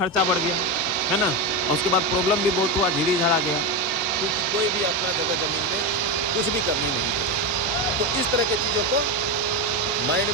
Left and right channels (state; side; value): normal; both; correlation 0.13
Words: बढ़ गया है ना, और उसके बाद प्रॉब्लम भी बहुत हुआ, झीड़ी झड़ा गया। तो कोई भी अपना जगह जमीन पे कुछ भी करनी नहीं। तो इस तरह की चीज़ों को माइंड